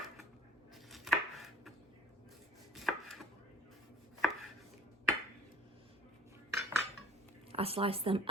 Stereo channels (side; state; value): both; normal; correlation 0.49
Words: I slice them